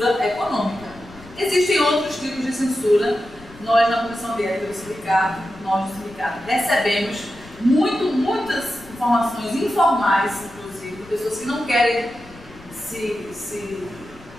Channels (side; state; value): left; noise; rumble, 21 dB below the sound